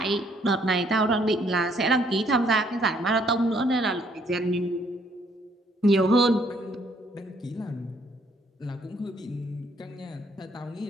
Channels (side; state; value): both; normal; correlation 0.67